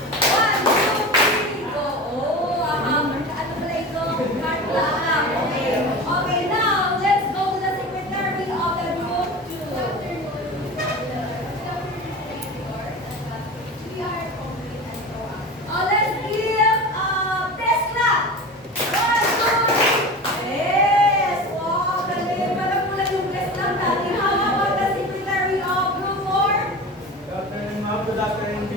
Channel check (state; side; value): normal; both; correlation 0.31